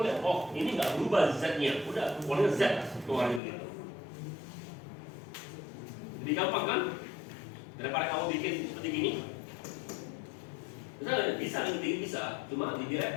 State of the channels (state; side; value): drops out; right; at 3.4 s